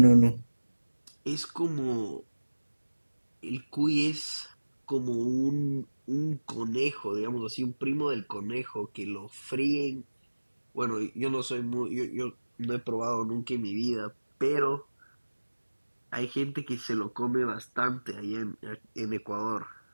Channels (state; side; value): inverted; both; correlation -1.00